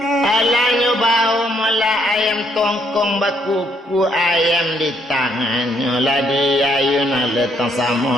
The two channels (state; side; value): normal; both; correlation 0.71